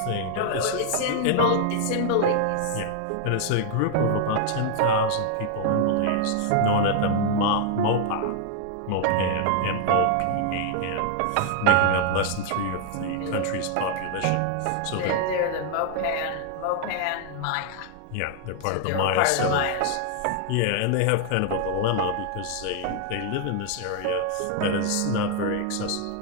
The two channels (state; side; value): different; both; correlation 0.00